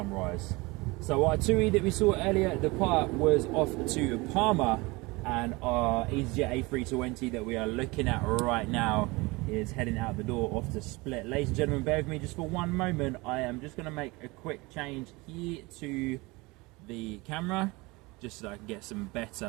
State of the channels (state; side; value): quieter; left; 24.0 dB